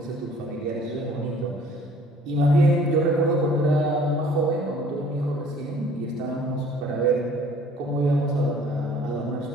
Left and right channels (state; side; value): normal; both; correlation 0.54